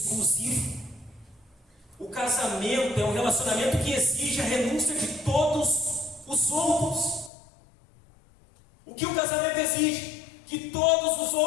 O casamento é um relacionamento que exige a renúncia de todos os outros. O que o casamento exige? Que todos os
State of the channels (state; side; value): drops out; right; at 7.3 s